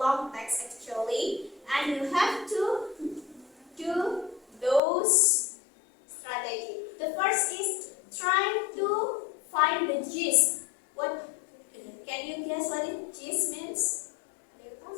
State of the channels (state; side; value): drops out; right; at 4.8 s